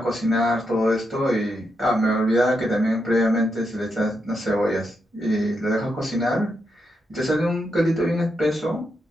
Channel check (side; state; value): both; normal; correlation 0.83